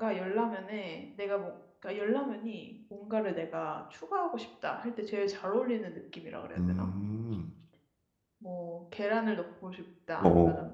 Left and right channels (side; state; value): both; identical; correlation 1.00